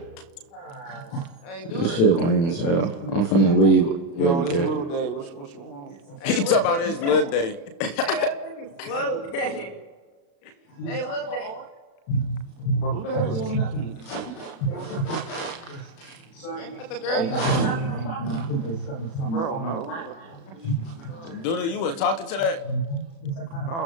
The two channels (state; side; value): late; right; 36 ms